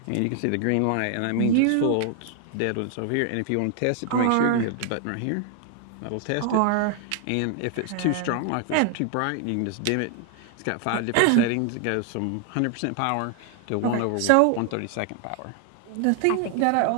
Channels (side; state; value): both; different; correlation 0.00